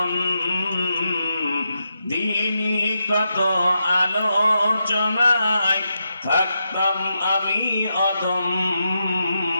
দিনী কত আলোচনায় থাকতাম আমি অধম,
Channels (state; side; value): inverted; both; correlation -0.85